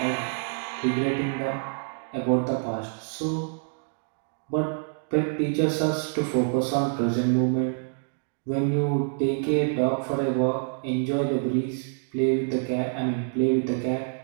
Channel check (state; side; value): silent; left; 59 dB below the other